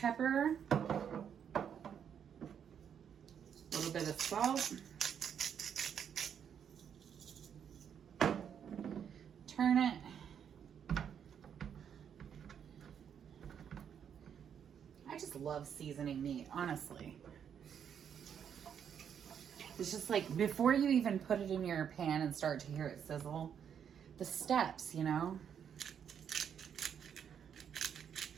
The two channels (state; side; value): quieter; left; 8.2 dB